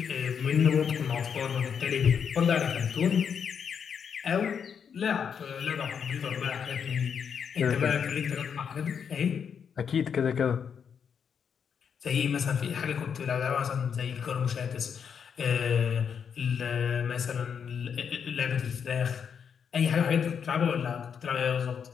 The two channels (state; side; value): quieter; right; 7.2 dB